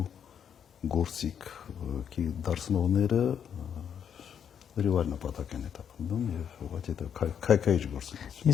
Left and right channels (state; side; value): quieter; right; 8.2 dB